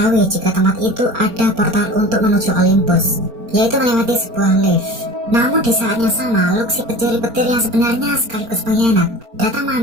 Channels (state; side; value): late; left; 4.4 ms